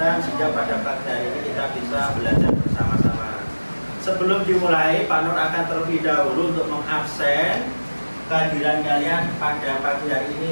sehingga pada pagi hari ini kita bisa belajar bersama-sama. Sebelum dimulai, Pak Nur akan terlebih dahulu untuk mengabsen kehadiran kalian pada pagi hari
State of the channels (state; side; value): inverted; both; correlation -1.00